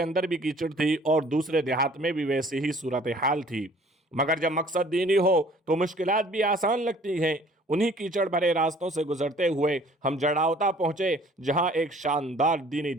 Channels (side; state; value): both; normal; correlation 0.54